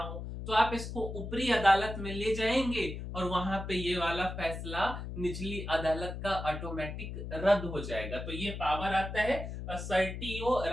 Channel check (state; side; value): noise; left; hum, 7 dB below the sound